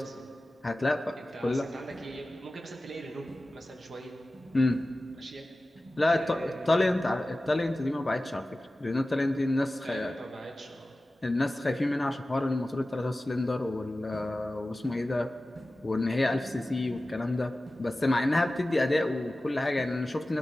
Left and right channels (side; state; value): both; normal; correlation 0.96